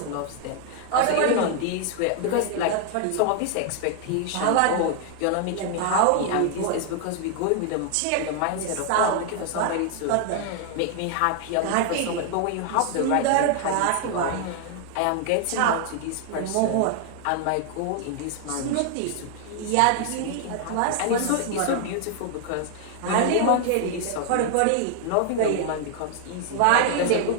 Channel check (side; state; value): both; different; correlation 0.00